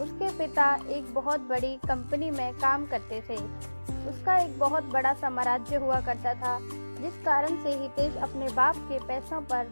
उसके पिता एक बहुत बड़ी कंपनी में काम करते थे। उसका एक बहुत बड़ा साम्राज्य हुआ करता था, जिस कारण से हितेश अपने बाप के पैसों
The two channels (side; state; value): both; inverted; correlation -1.00